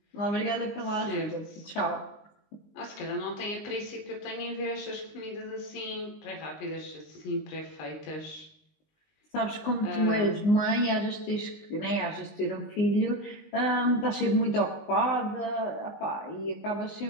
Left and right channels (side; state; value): right; late; 20 ms